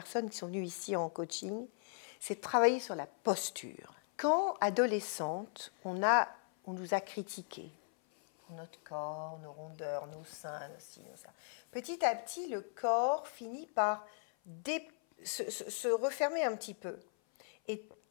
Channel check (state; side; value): silent; right; 53 dB below the other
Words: qui sont venues ici en coaching, c'est de travailler sur la posture. Quand, adolescente, on nous a critiqués pour notre corps, nos rondeurs, nos seins, nos ci, nos ça. Petit à petit, le corps finit par se refermer un petit peu. Et